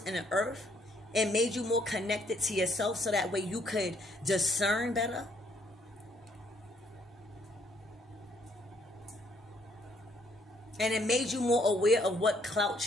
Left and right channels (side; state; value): both; normal; correlation 0.68